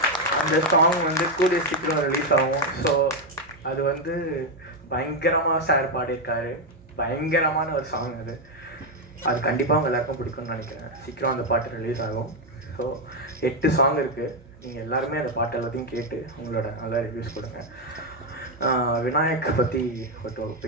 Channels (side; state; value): right; noise; hum, 24 dB below the sound